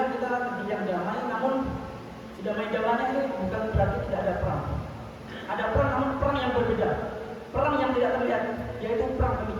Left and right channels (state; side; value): identical; both; correlation 1.00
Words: kita negeri yang damai, namun damai-damainya ini bukan berarti tidak ada perang. Ada perang, namun perang yang berbeda, perang yang tidak terlihat, yaitu perang